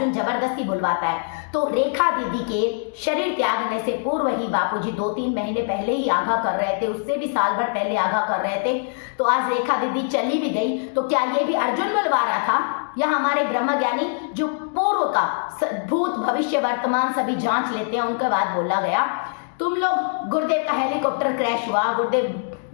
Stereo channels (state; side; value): silent; right; digital silence